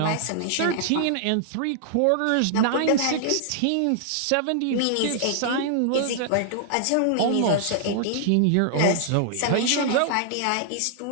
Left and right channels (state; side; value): different; both; correlation -0.01